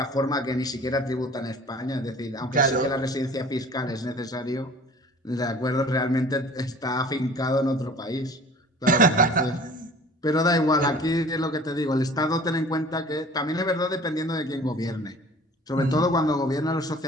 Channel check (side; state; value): both; normal; correlation 0.46